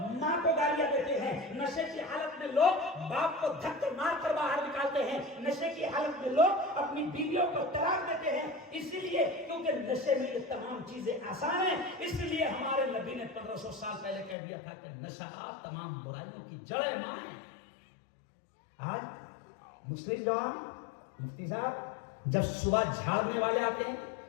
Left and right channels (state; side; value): drops out; right; at 14.4 s